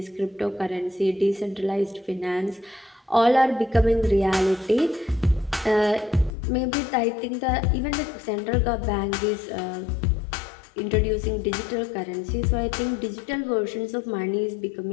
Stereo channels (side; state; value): right; drops out; at 6.4 s